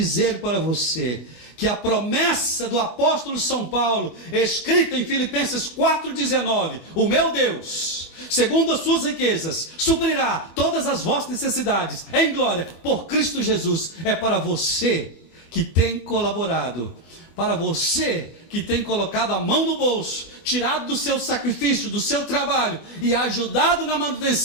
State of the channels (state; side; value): late; right; 24 ms